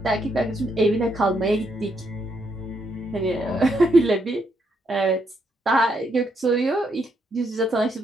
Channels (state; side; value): normal; both; correlation 0.76